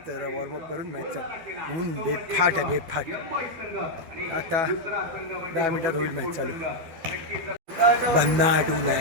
जरा वॉर्मअप करून मॅच चालू. ऊन बेफाट आहे, बेफाट. आता 10 मिनिटात होईल मॅच चालू. भन्ना आटून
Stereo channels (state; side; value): late; left; 12 ms